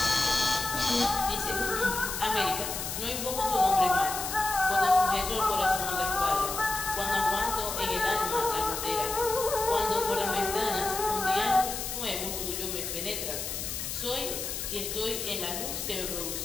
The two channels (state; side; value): noise; left; hiss, 5 dB below the sound